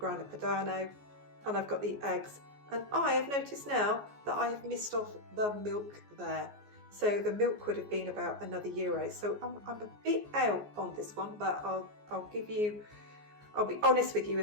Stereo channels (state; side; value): late; left; 14 ms